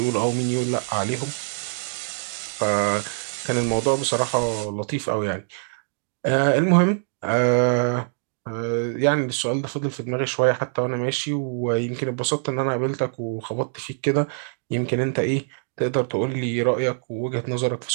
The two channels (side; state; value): left; silent; digital silence